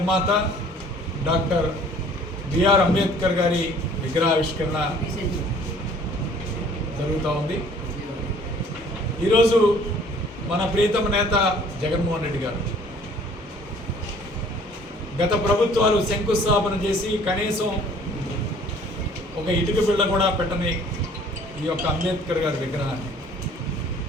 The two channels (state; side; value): normal; both; correlation 0.54